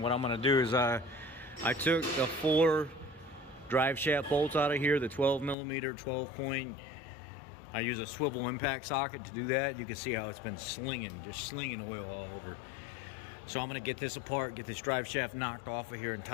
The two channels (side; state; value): right; drops out; at 5.6 s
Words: what I'm gonna do is I took the 4 drive shaft bolts out of here, the 12 millimeter, 12 point. I use a swivel impact socket to do that. You can see how it's been slinging, just slinging oil all over. So I'm gonna get this apart, get this drive shaft knocked off of here and